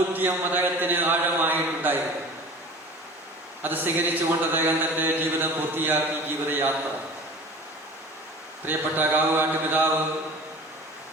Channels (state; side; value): normal; both; correlation 0.40